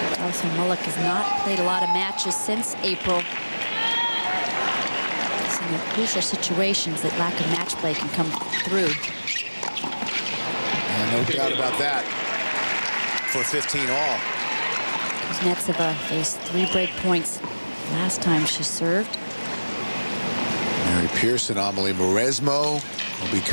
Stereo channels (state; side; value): inverted; both; correlation -1.00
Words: Molik has not played a lot of matches since April. It's in the crucial situations that lack of match play can come through. No doubt about that. For 15 all. Kuznetsova faced 3 break points last time she served. Mary Pearson, Amelie Mauresmo will be